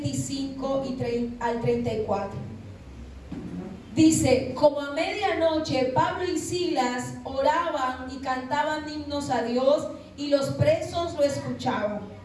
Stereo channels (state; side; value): identical; both; correlation 1.00